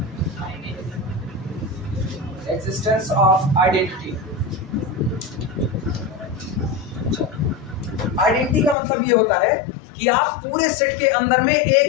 existence of identity। आइडेंटिटी का मतलब ये होता है कि आप पूरे सेट के अंदर में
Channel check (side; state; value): right; drops out; at 8.8 s